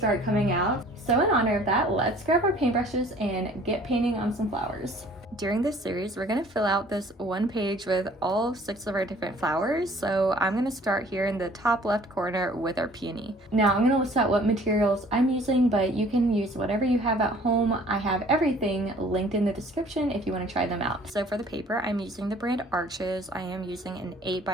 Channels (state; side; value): normal; both; correlation 0.53